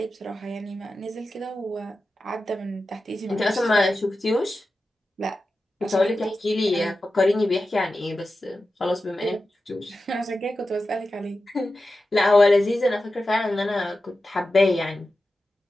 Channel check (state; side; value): normal; both; correlation 0.93